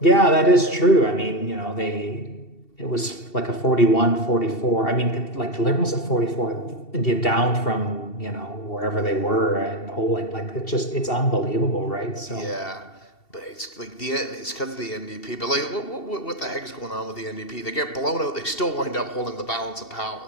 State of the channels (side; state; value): right; late; 2.7 ms